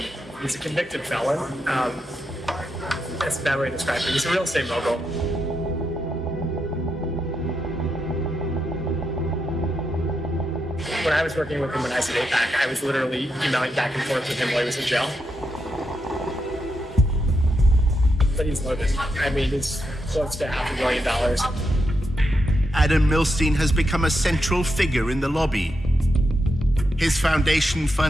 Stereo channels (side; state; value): both; normal; correlation 0.84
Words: He's a convicted felon. That's a bad way to describe him. He's a real estate mogul. When I was working with him when I was at APAC, I was literally emailing back and forth with him while he was in jail. But he's loaded. I mean, he's close to $500 million. Adam Milstein has become a central figure in the lobby. His foundation